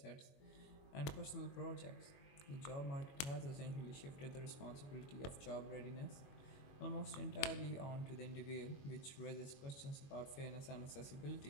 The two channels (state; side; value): late; right; 21 ms